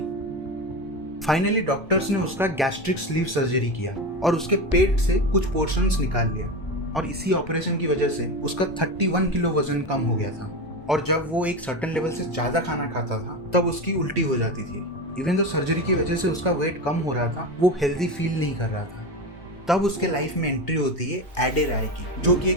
फाइनली डॉक्टर्स ने उसका गैस्ट्रिक स्लीव सर्जरी किया और उसके पेट से कुछ पोर्शंस निकाल लिया। और इसी ऑपरेशन की वजह से उसका 31 किलो वजन कम हो गया था। और जब वो एक सर्टेन लेवल से ज्यादा खाना खाता था तब उसकी उल्टी हो जाती थी। इवन तो सर्जरी की वजह से उसका वेट कम हो रहा था, वो हेल्दी फील नहीं कर रहा था। तब उसके लाइफ में एंट्री होती है एडे राय की, जो कि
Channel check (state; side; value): normal; both; correlation 0.21